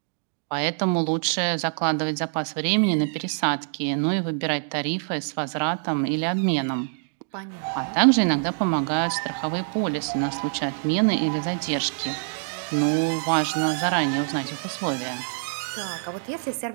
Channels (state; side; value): silent; left; digital silence